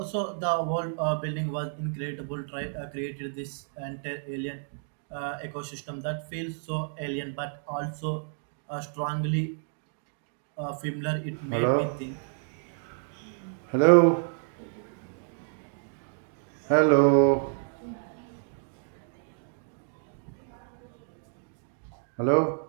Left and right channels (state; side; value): silent; left; digital silence